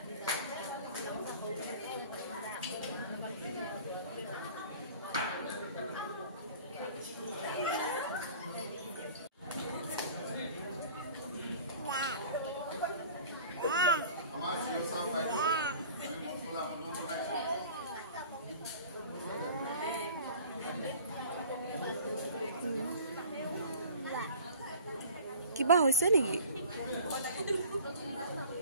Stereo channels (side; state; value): both; inverted; correlation -0.45